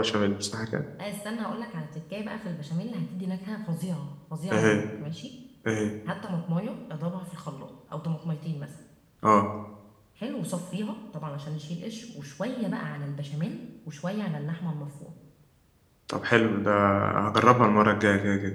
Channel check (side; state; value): both; identical; correlation 1.00